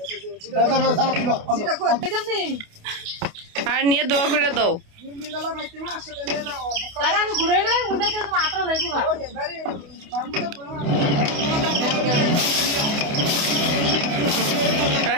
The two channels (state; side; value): late; left; 28 ms